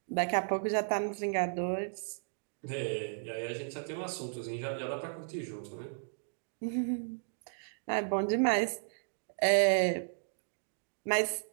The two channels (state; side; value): silent; left; digital silence